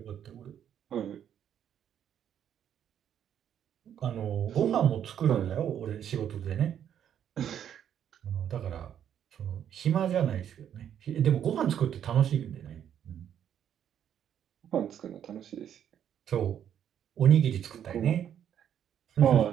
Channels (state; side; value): quieter; left; 9.5 dB